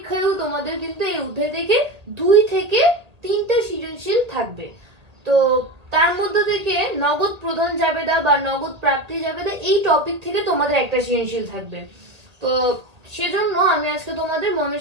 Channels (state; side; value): late; left; 1.8 ms